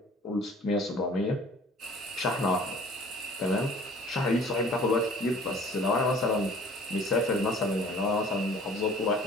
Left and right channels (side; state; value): both; normal; correlation 0.50